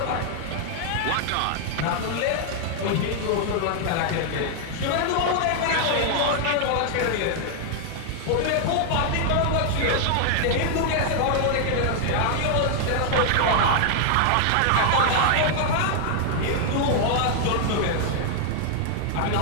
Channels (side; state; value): both; different; correlation 0.00